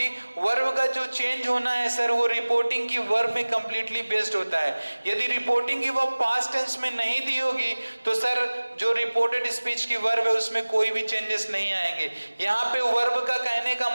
वर्ब का जो चेंज होना है सर वो रिपोर्टिंग की वर्ब में कंप्लीटली बेस्ड होता है। यदि रिपोर्टिंग की वर्ब पास्ट टेंस में नहीं दी होगी तो सर जो रिपोर्टेड स्पीच की वर्ब है उसमें कोई भी चेंजेस नहीं आएंगे। यहाँ पे वर्ब का कहने का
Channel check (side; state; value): both; inverted; correlation -1.00